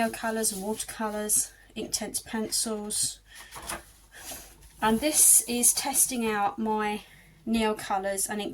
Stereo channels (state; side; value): identical; both; correlation 1.00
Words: and watercolours, Inktense pencils. And this is testing out my neo-colours and